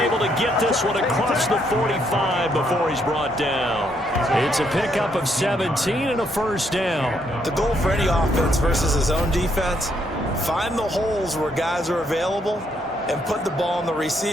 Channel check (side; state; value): both; normal; correlation 0.73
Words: to get this one across the 45 before he's brought down. It's a pickup of 17 and a first down. The goal for any offense versus his own defense, find the holes where guys are available and put the ball on the